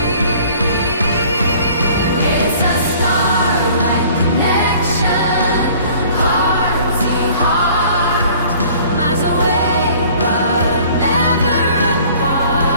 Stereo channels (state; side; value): inverted; both; correlation -0.52